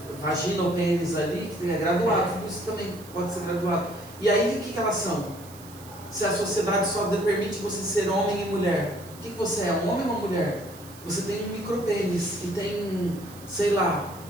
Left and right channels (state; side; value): noise; right; hiss, 19 dB below the sound